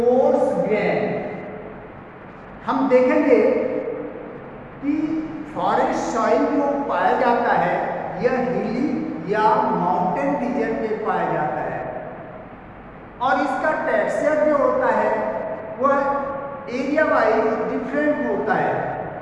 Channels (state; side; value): identical; both; correlation 1.00